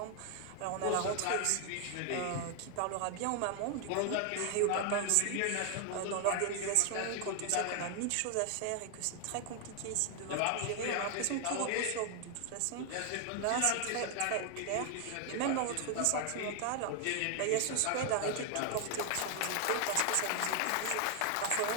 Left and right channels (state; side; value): different; both; correlation 0.00